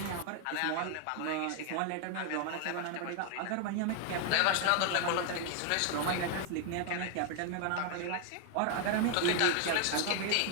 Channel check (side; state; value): both; different; correlation 0.00